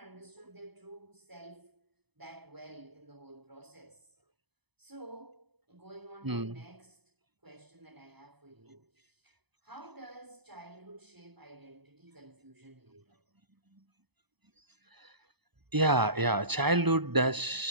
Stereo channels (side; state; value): left; late; 0.99 ms